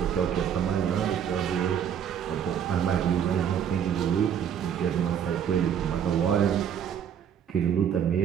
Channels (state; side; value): quieter; left; 8.6 dB